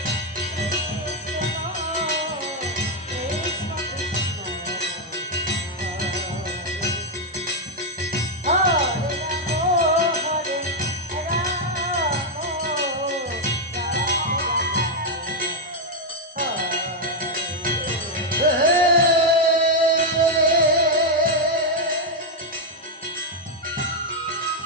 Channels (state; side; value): normal; both; correlation 0.01